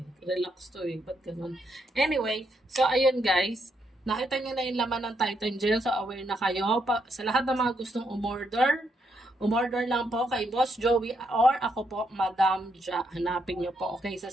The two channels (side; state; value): both; normal; correlation 0.77